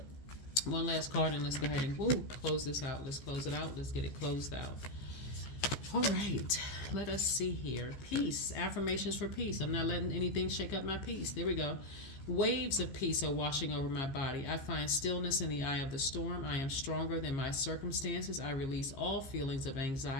One last card, and let's go ahead and close this out. Let's close it out. Let's get it closed out. All right. Let us see here. Peace. Affirmations for peace. I'm not letting anything shake up my peace. There we go. Waves of peace are washing over my body. I find stillness in the eye of the storm. I am stronger than my circumstances. I release all feelings of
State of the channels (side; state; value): right; late; 15 ms